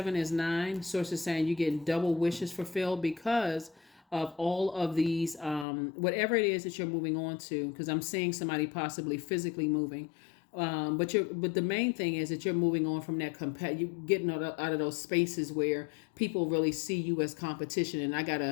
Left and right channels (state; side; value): drops out; right; at 5.7 s